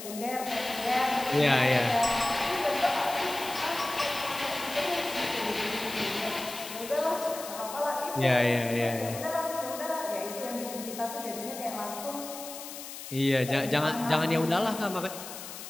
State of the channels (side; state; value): left; noise; hiss, 11 dB below the sound